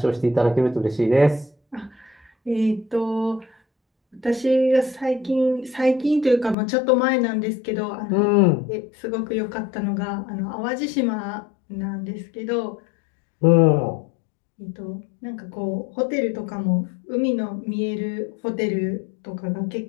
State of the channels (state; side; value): drops out; right; at 6.6 s